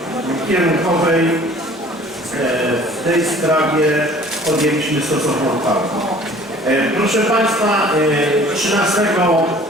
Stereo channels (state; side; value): normal; both; correlation 0.50